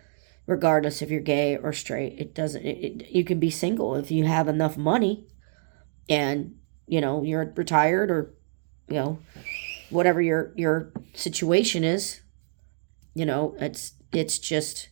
Regardless if you're gay or straight, you can be single if you have enough money and, you're retired or, whatever your situation is, it's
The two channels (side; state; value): left; silent; digital silence